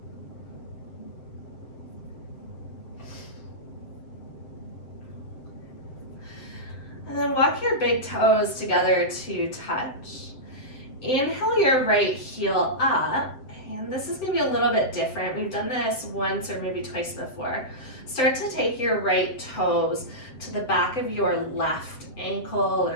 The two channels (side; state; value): right; late; 7.8 ms